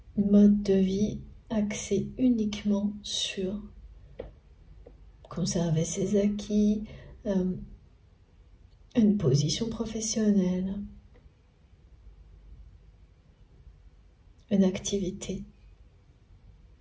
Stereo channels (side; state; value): both; identical; correlation 1.00